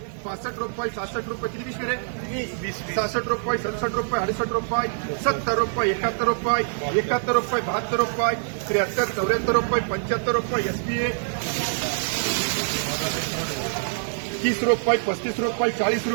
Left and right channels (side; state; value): left; silent; digital silence